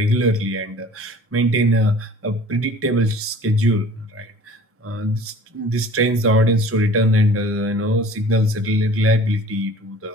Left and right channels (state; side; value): normal; both; correlation 0.47